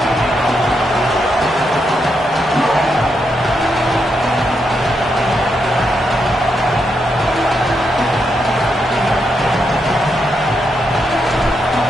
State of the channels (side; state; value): both; normal; correlation 0.81